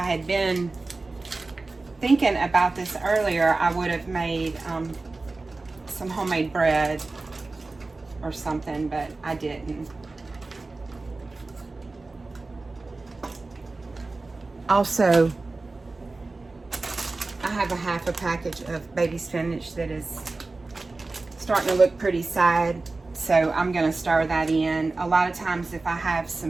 had been thinking about this earlier, I would have made some homemade bread or something, but I didn't. Also, I have a half a package of baby spinach that is starting to look pretty sad, so I'm going to stir that in. A lot of times if I have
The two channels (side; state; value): left; quieter; 3.5 dB